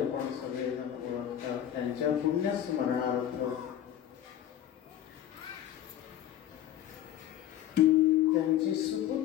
सगळेजण ओळखतात. त्यांच्या पुण्यस्मरणार्थ त्यांचे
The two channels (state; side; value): quieter; right; 11.3 dB